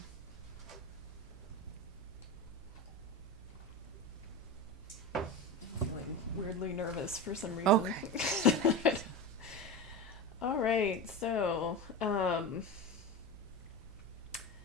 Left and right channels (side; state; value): left; noise; hum, 25 dB below the sound